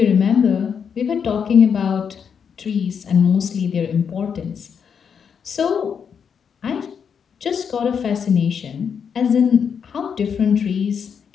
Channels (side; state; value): right; quieter; 7.0 dB